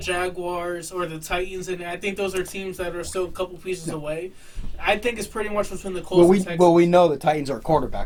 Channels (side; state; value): both; identical; correlation 1.00